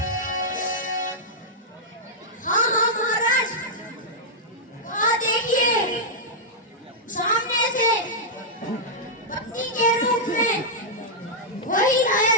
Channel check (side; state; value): both; normal; correlation -0.08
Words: हाँ हाँ महाराज, देखिए सामने से पत्नी के रूप में वही लाया